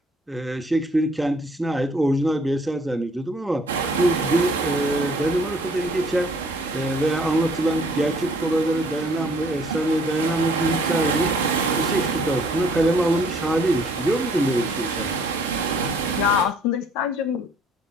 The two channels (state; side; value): normal; both; correlation 0.60